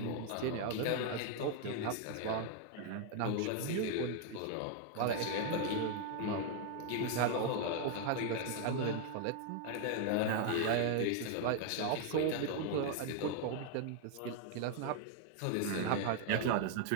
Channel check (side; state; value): both; different; correlation 0.00